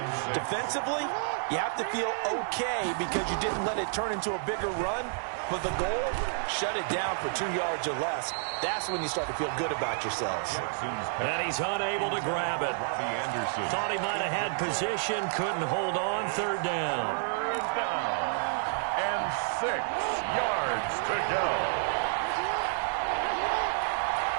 Defensively, you have to feel okay because you didn't let it turn into a bigger run, but the goal, shut it down for 2 yards or less. That's when you start to feel good about yourselves. And he's unable to grab it. Thought he might have had position, couldn't hold on. Third down. Third down. And 6 yards to go.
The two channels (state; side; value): silent; left; digital silence